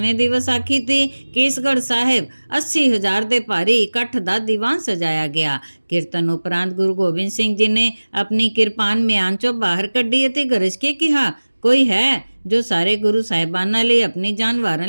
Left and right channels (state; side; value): inverted; both; correlation -1.00